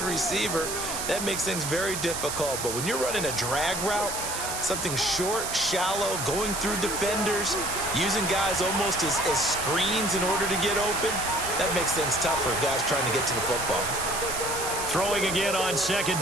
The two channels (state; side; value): noise; right; hiss, 4 dB below the sound